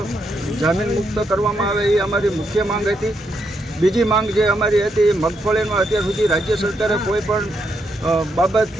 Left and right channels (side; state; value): both; normal; correlation 0.79